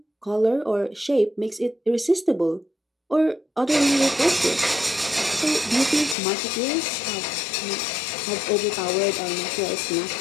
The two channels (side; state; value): right; drops out; at 6.2 s